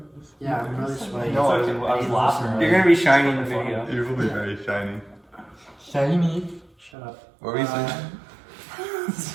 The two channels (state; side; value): drops out; left; at 6.9 s